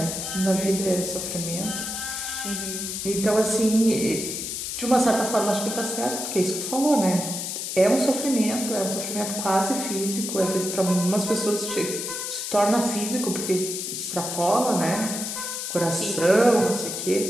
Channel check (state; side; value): noise; left; hiss, 4 dB below the sound